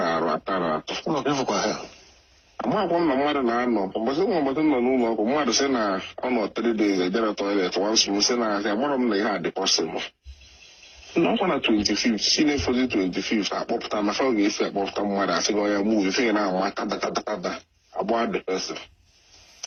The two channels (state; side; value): identical; both; correlation 1.00